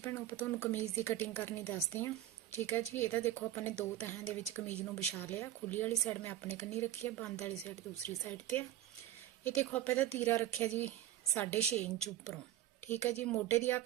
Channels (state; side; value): quieter; left; 13.1 dB